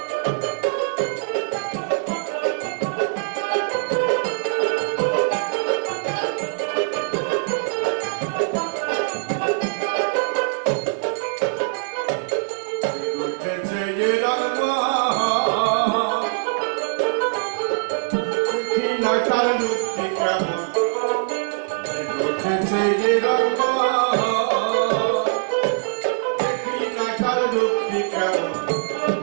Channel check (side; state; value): left; silent; 60 dB below the other